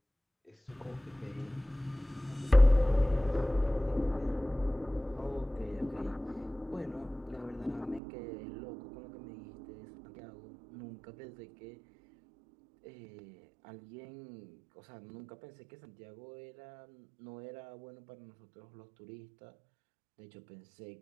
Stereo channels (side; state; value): left; drops out; at 8.0 s